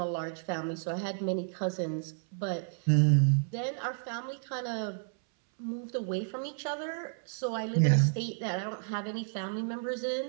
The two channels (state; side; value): silent; left; 57 dB below the other